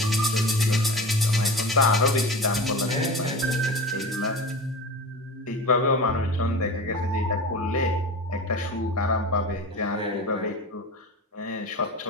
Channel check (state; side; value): normal; both; correlation 0.31